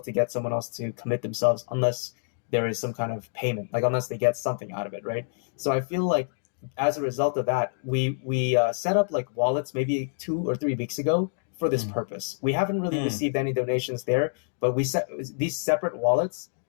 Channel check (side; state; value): right; silent; digital silence